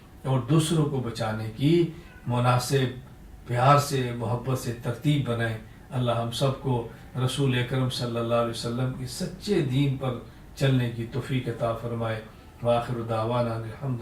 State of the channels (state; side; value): identical; both; correlation 1.00